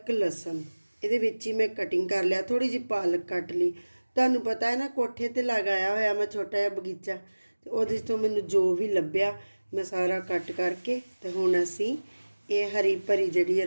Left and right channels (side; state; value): both; inverted; correlation -1.00